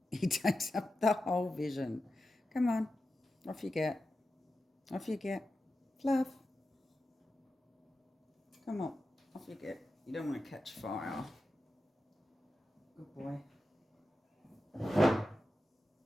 up the whole vision. Come on, off you get. Off you get. Fluff. Come on, off you get. You don't want to catch fire. Good boy.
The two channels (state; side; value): normal; both; correlation 0.91